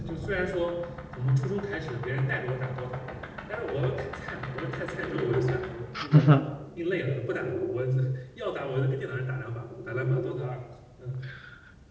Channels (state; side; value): identical; both; correlation 1.00